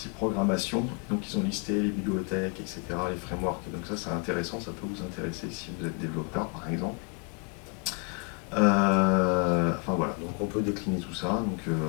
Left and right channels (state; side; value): quieter; right; 36.4 dB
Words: programmation. Donc ils ont listé les bibliothèques, etc., les frameworks. Et donc ça c'est intéressant, ça peut vous intéresser si vous êtes développeur par exemple. Enfin voilà, donc on peut décliner tout ça.